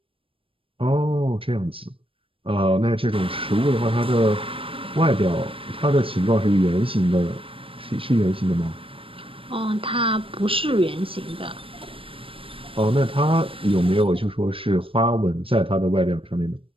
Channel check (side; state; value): left; late; 0.26 ms